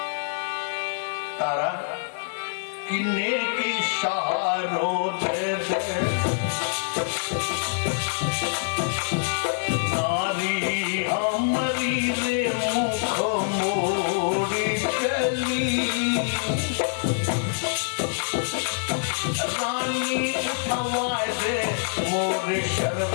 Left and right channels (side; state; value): right; silent; digital silence